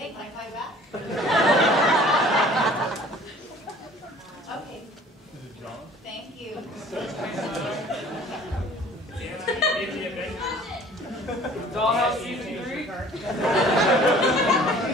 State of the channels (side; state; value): both; normal; correlation 0.50